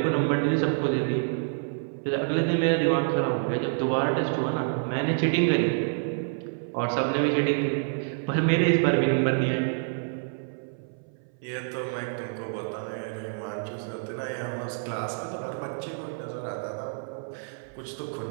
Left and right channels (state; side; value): silent; left; 60 dB below the other